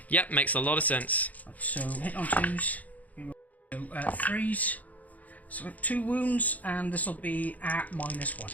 Yep, makes a lot of sense. So hit on 2s. So 3s. So 2 wounds, and this will be at -1.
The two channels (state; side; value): late; right; 0.076 ms